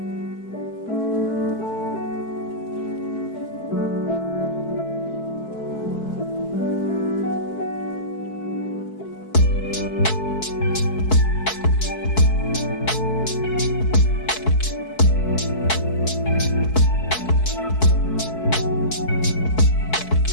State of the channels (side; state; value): right; late; 4.6 ms